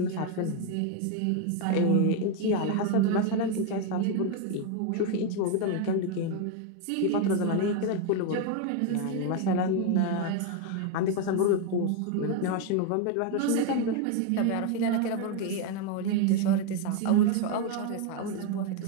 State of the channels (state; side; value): different; both; correlation 0.01